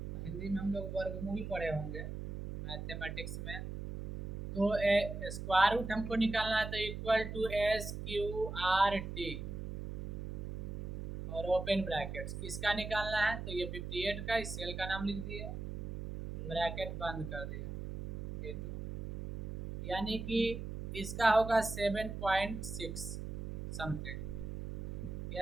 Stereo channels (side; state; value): right; noise; hum, 6 dB below the sound